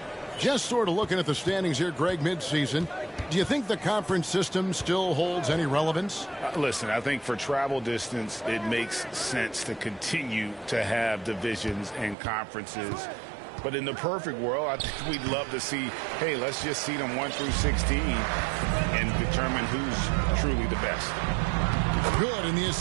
Just sort of looking at the standings here, Greg, midseason. Do you think the conference system still holds any relevance? Listen, I think for travel distance, it makes sense to continue to have divisions and conferences. But in the perfect world, I think we'd love to see, hey, let's just see them 1 through 16 and determine who's truly the best. Good, and the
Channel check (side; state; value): left; drops out; at 12.2 s